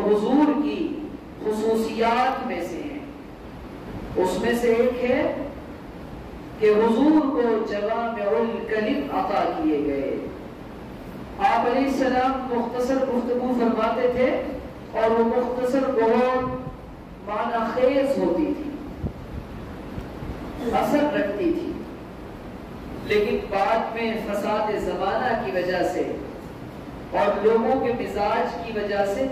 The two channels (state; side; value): identical; both; correlation 1.00